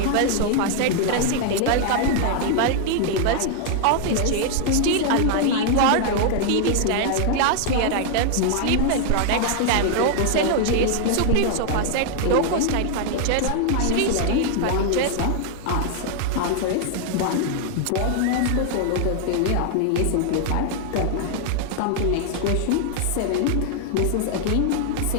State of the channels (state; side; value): different; both; correlation 0.00